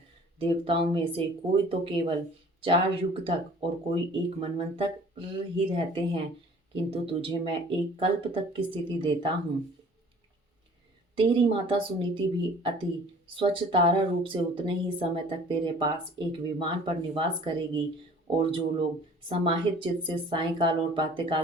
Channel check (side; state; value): both; normal; correlation 0.50